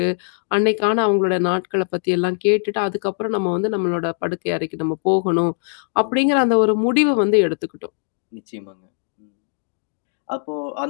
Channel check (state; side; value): silent; right; 65 dB below the other